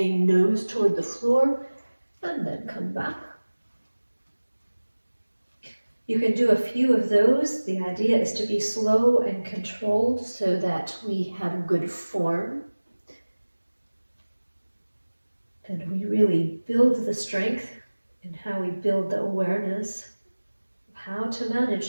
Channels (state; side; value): inverted; both; correlation -1.00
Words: nose toward the floor, and then come back. You can do a few of those. The idea is to be slow and controlled so that we have good form. And we really build the strength in how we build the awareness of how to